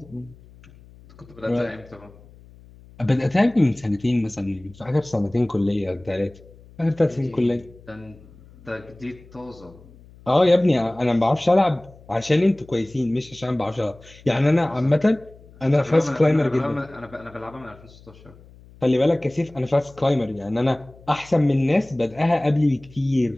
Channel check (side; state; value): left; noise; hum, 23 dB below the sound